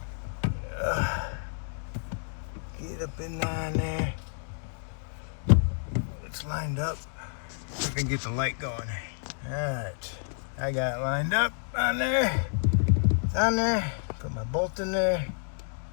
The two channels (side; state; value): right; silent; digital silence